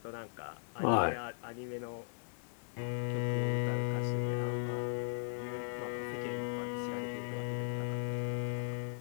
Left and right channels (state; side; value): silent; right; digital silence